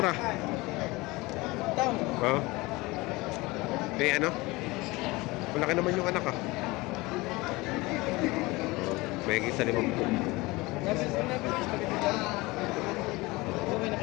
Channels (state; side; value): quieter; right; 22.3 dB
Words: Tang. Oo. Eh, ano? Malaki naman yung anak, ah. May isa 50. Okay na